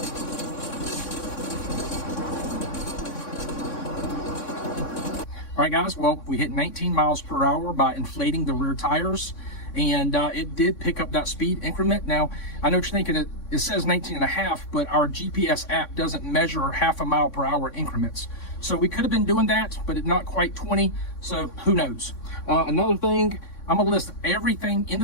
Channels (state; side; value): late; right; 3.6 ms